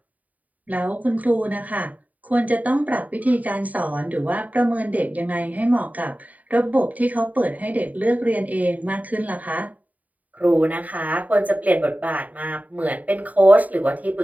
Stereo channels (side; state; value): left; late; 0.074 ms